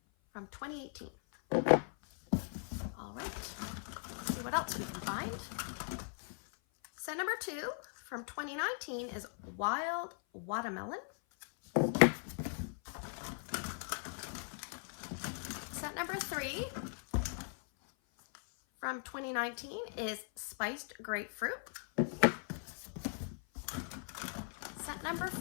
from 2018. All right, let's see what else we can find. Scent number 2 from 2019 is Wild Watermelon. Scent number 3 from 2019 is Spiced Grapefruit. Scent number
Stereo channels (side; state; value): right; silent; 52 dB below the other